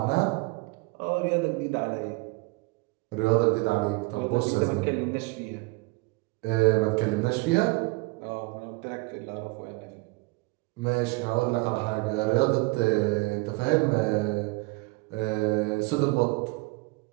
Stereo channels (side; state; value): left; quieter; 25.7 dB